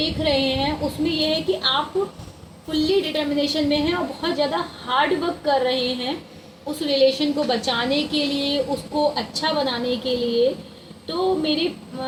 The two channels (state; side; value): identical; both; correlation 1.00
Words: रहे हैं, उसमें यह है कि आप फुल्ली डिटर्मिनेशन में हैं और बहुत ज़्यादा हार्ड वर्क कर रहे हैं उस रिलेशन को बचाने के लिए, उसको अच्छा बनाने के लिए। तो मेरे